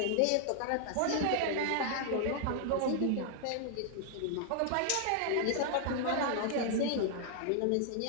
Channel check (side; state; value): both; different; correlation 0.00